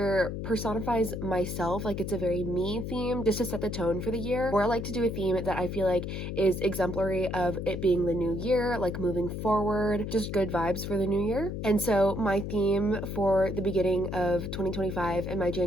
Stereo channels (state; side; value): noise; left; hum, 5 dB below the sound